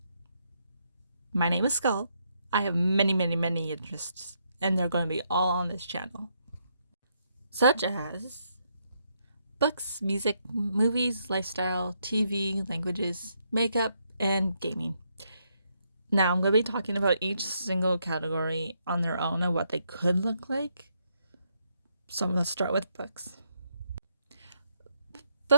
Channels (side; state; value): both; inverted; correlation -0.77